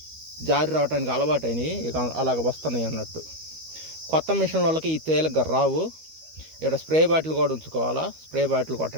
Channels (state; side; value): late; left; 13 ms